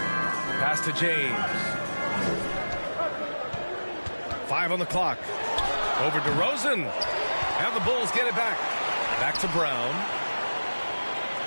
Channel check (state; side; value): inverted; both; correlation -1.00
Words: Pass to James. 5 on the clock. Over to DeRozan. And the Bulls get it back. Back to Brown.